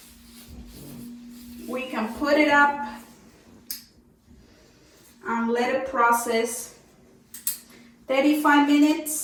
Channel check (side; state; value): both; identical; correlation 1.00